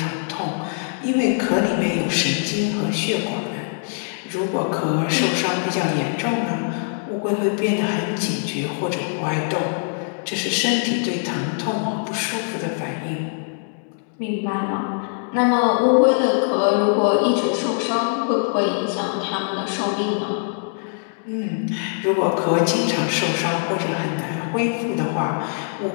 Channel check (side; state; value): right; silent; 64 dB below the other